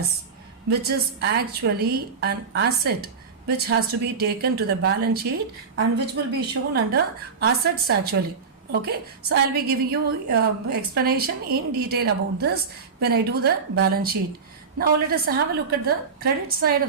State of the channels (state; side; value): quieter; left; 5.3 dB